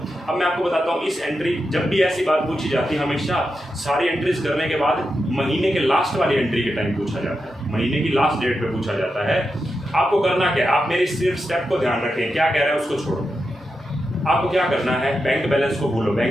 अब मैं आपको बताता हूँ, इस एंट्री जब भी ऐसी बात पूछी जाती है हमेशा सारी एंट्रीज करने के बाद महीने के लास्ट वाली एंट्री के टाइम पूछा जाता है, महीने की लास्ट डेट पे पूछा जाता है। आपको करना क्या है, आप मेरी सिर्फ स्टेप को ध्यान रखें, क्या कह रहा है उसको छोड़ो। आपको क्या करना है, बैंक बैलेंस को भूलो,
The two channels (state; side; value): normal; both; correlation 0.88